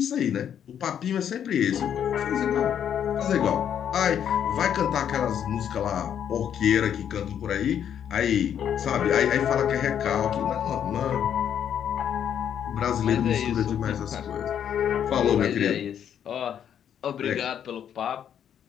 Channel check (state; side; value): quieter; right; 9.1 dB